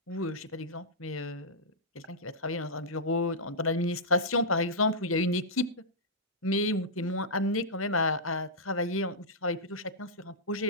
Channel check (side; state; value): both; normal; correlation -0.12